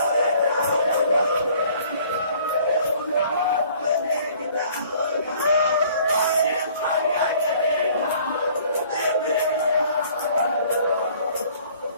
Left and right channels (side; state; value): both; inverted; correlation -0.55